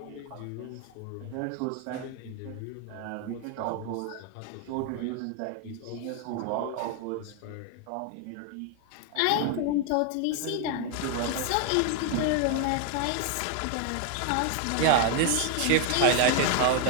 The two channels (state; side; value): different; both; correlation 0.00